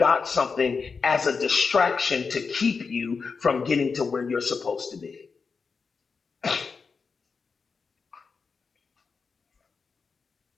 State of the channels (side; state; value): right; quieter; 5.1 dB